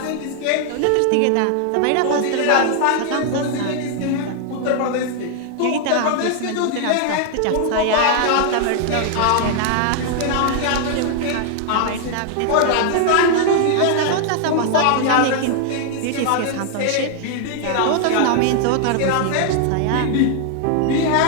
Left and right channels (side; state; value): both; different; correlation 0.00